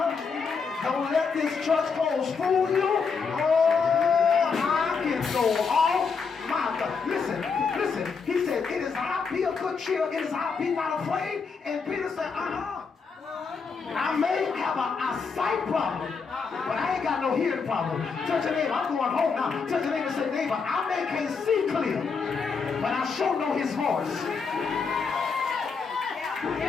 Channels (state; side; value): quieter; right; 5.3 dB